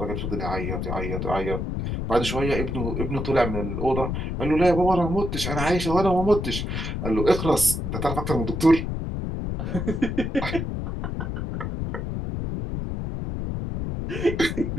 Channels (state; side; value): noise; left; rumble, 3 dB below the sound